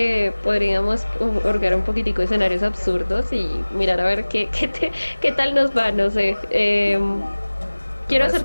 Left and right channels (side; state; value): both; inverted; correlation -1.00